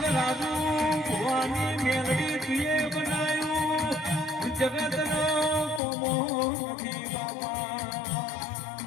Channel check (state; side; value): drops out; right; at 5.8 s